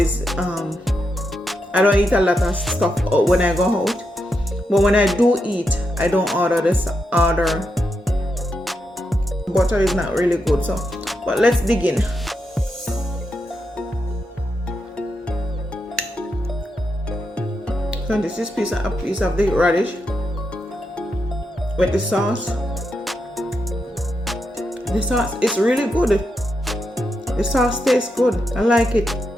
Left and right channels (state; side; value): normal; both; correlation 0.84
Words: I don't eat a lot of stuff when I go out, but when I do eat, I don't order butter is not really good. So but let's dig in. So this is a piece of the radish with the sauce. The sauce is really good. The sauce tastes good. I like it.